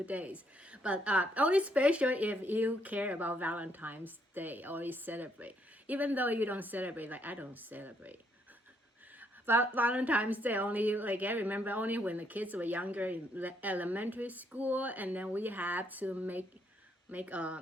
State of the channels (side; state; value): both; normal; correlation 0.72